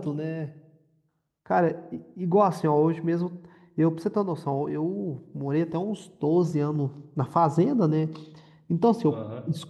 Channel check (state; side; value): identical; both; correlation 1.00